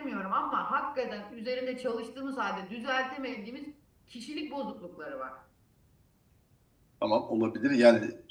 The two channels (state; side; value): identical; both; correlation 1.00